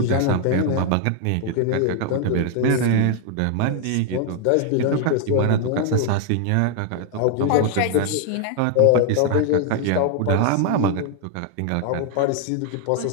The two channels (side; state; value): both; different; correlation 0.00